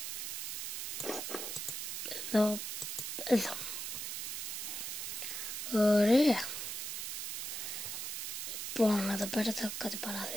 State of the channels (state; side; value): noise; right; hiss, 5 dB below the sound